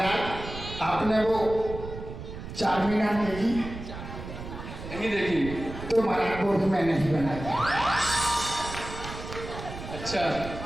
आपने वो चार मीनार देखी? नहीं देखी। तो महाराज वो भी मैंने ही बनाया। अच्छा,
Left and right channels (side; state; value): right; noise; rumble, 10 dB below the sound